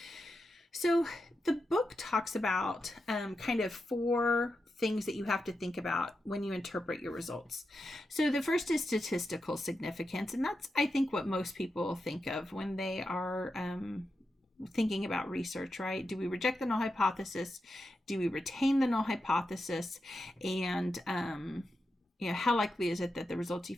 So the book talks about kind of 4 things that you have to think about when you interpret your results. So the first is statistical significance, and that's, I think, what most people think of when they are thinking about research, right? Do we reject the null hypothesis? Do we retain the null hypothesis? And how likely is it that the results you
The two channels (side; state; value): both; normal; correlation 0.88